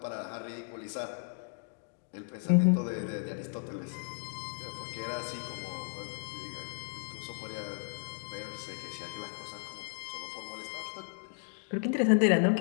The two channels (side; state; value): right; silent; 55 dB below the other